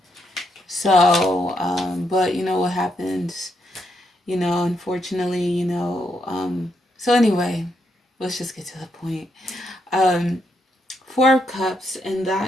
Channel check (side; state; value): both; normal; correlation 0.79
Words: So, but what happens, unfortunately, so anyway, let's just get to the point. Four of Cups, and